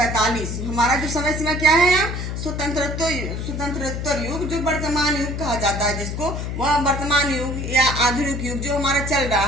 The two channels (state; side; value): noise; left; hum, 4 dB below the sound